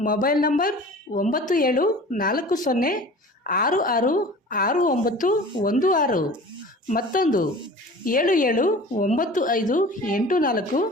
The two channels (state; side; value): normal; both; correlation 0.41